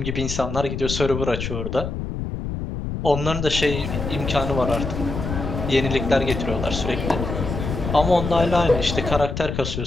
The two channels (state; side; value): noise; left; rumble, 5 dB below the sound